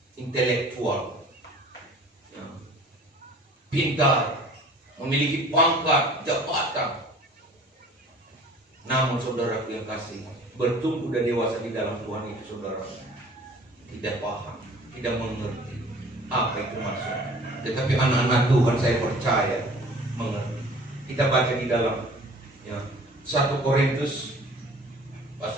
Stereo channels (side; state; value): both; normal; correlation 0.48